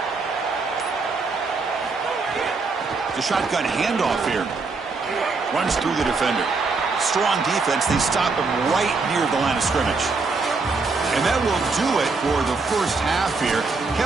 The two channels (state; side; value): quieter; left; 4.1 dB